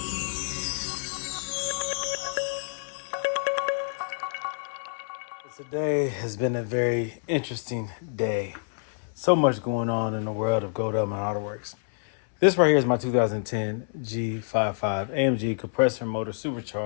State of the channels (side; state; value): right; silent; 60 dB below the other